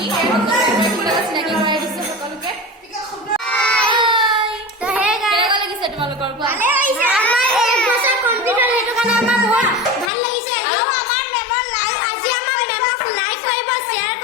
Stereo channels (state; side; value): drops out; right; at 10.1 s